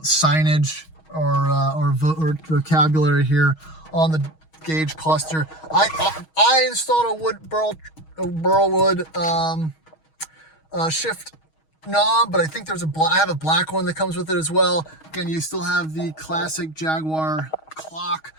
signage or vocabulary here on the gauge cluster. I installed a Burlwood shift knob, but I think there's I have a black one that comes with it as well. Again, you still have the classic Jaguar clock,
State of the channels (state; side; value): late; right; 6.3 ms